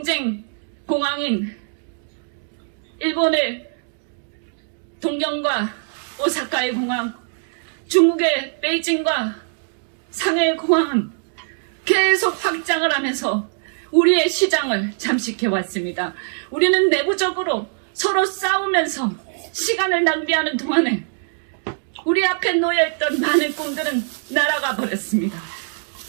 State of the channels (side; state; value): left; silent; digital silence